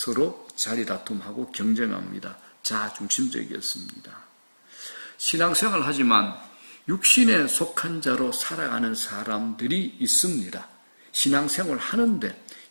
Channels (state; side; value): inverted; both; correlation -1.00